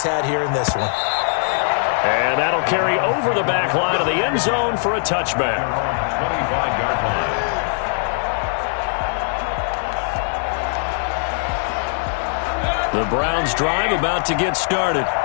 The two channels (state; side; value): silent; right; digital silence